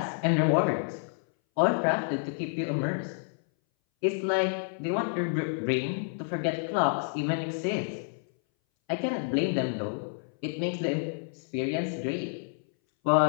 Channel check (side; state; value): right; silent; 58 dB below the other